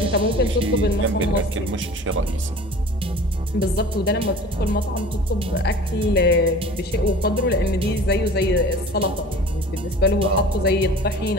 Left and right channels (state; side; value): normal; both; correlation 0.42